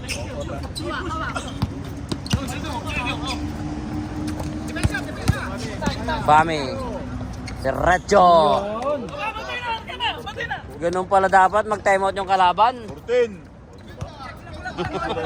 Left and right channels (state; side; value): identical; both; correlation 1.00